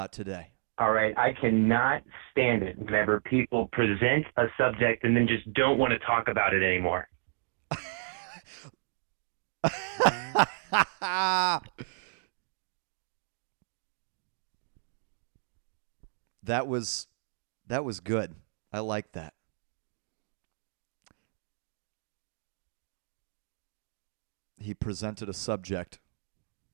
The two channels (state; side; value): silent; left; digital silence